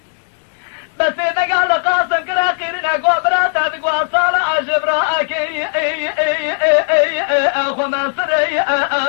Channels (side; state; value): right; silent; digital silence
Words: بس إذا قال قاسم كلا خيرنا قوبرات هذا قواصال عجبراك أخو منصري